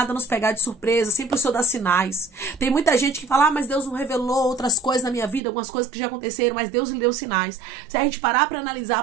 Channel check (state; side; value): drops out; left; at 5.4 s